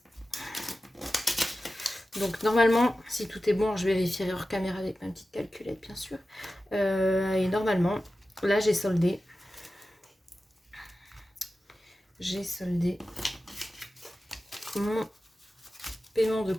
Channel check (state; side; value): normal; both; correlation 0.94